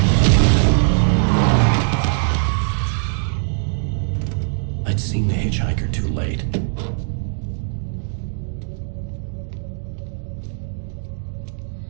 I'd seen the hitchhiker too late.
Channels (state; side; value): silent; left; 62 dB below the other